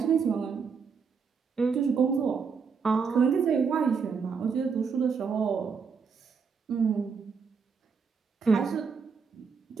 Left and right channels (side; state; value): left; quieter; 5.7 dB